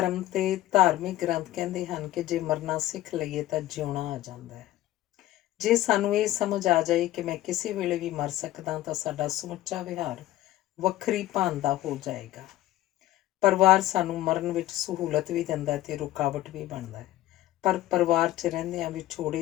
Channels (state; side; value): quieter; right; 14.9 dB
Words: ਤੇ ਧਾਰਮਿਕ ਗ੍ਰੰਥ ਕਹਿੰਦੇ ਹਨ ਕਿ ਜੇ ਮਰਨਾ ਸਿੱਖ ਲਈਏ ਤਾਂ ਜਿਉਣਾ ਆ ਜਾਂਦਾ ਹੈ। ਜੇ ਸਾਨੂੰ ਇਹ ਸਮਝ ਆ ਜਾਏ ਕਿ ਮੈਂ ਕਿਸੇ ਵੇਲੇ ਵੀ ਮਰ ਸਕਦਾ ਤਾਂ ਸਾਡਾ ਸਮੁੱਚਾ ਵਿਹਾਰ ਵੱਖਰੀ ਭਾਨ ਦਾ ਹੋ ਜਾਏਗਾ। ਪਰਿਵਾਰ ਸਾਨੂੰ ਮਰਨ ਵਿੱਚ ਸਹੂਲਤ ਵੀ ਦਿੰਦਾ ਤੇ ਰੁਕਾਵਟ ਵੀ ਬਣਦਾ ਹੈ, ਪਰ ਪਰਿਵਾਰ 'ਚ ਰਹਿੰਦਿਆਂ